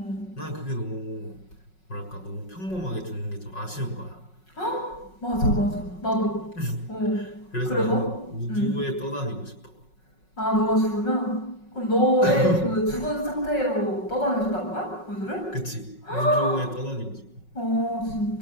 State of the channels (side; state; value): right; late; 5.4 ms